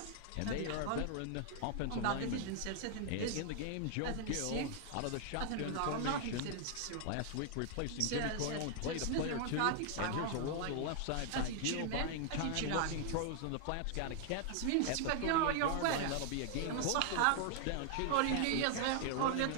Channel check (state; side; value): different; both; correlation 0.00